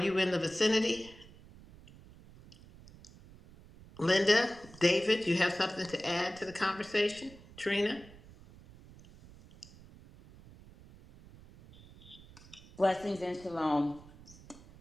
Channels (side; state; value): right; noise; rumble, 21 dB below the sound